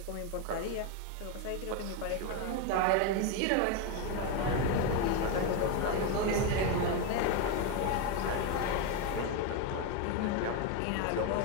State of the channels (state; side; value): different; both; correlation 0.02